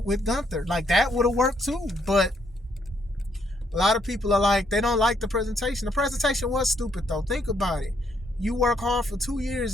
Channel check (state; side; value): normal; both; correlation 0.72